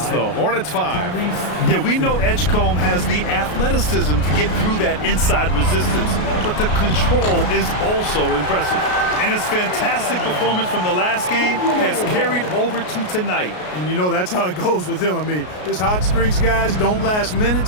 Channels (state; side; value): late; right; 33 ms